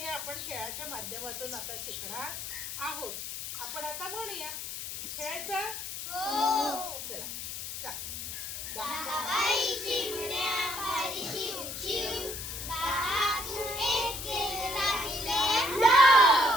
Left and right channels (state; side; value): noise; left; hiss, 7 dB below the sound